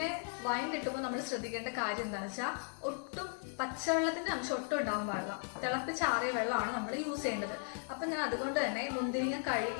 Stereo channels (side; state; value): right; silent; 53 dB below the other